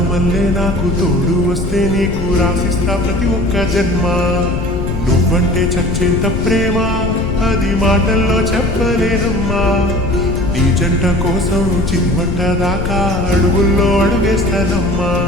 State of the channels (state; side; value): noise; left; rumble, 3 dB below the sound